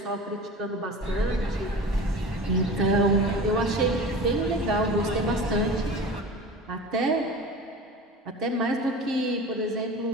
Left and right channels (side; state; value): both; normal; correlation 0.35